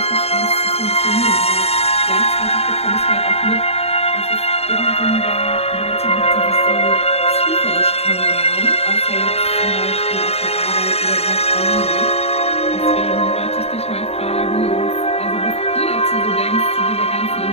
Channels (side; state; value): right; late; 0.30 ms